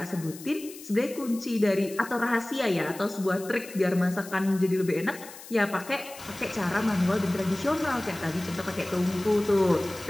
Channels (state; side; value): noise; left; hiss, 16 dB below the sound